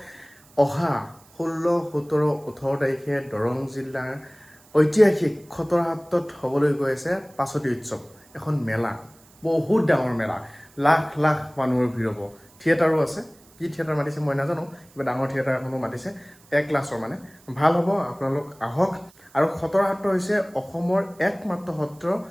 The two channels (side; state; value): right; noise; hiss, 28 dB below the sound